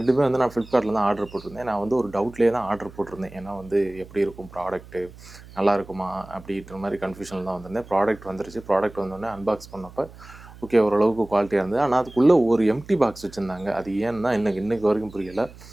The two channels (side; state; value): right; noise; hum, 19 dB below the sound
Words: வந்து நான் ஃப்ளிப்கார்ட்டில் தான் ஆர்டர் போட்டிருந்தேன். நான் வந்து ஒரு டவுட்லேயே தான் ஆர்டர் போட்டிருந்தேன். ஏன்னா வந்து எப்படி இருக்கும் ப்ராடக்ட்டு, நல்லா இருக்குமா அப்படின்ற மாதிரி கன்ஃபியூஷனில் தான் வந்திருந்தேன். ப்ராடக்ட் வந்துருச்சு. ப்ராடக்ட் வந்தோடனே அன்பாக்ஸ் பண்ணப்போ ஓகே ஓரளவுக்கு குவாலிட்டியாக இருந்தது. ஆனால் அதுக்குள்ளே ஒரு எம்டி பாக்ஸ் வச்சுருந்தாங்க. அது ஏன்னா இன்னைக்கு வரைக்கும் புரியலை.